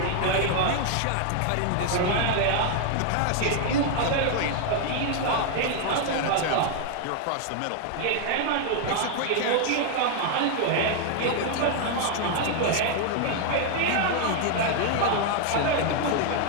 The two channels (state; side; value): different; both; correlation 0.00